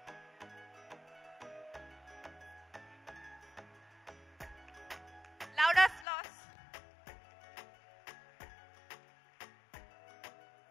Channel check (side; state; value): right; drops out; at 6.1 s